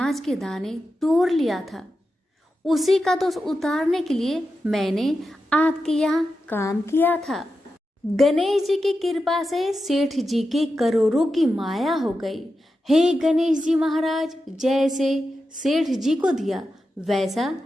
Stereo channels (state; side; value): normal; both; correlation 0.90